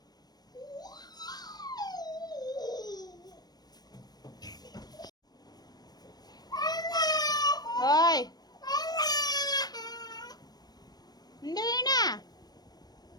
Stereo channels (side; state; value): right; late; 0.19 ms